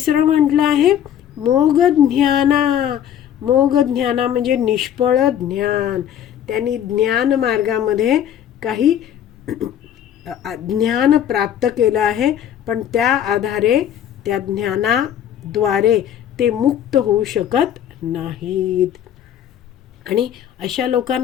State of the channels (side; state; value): right; quieter; 10.0 dB